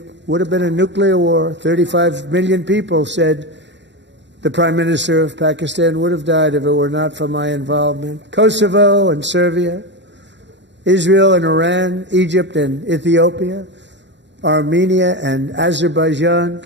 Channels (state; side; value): late; left; 0.52 ms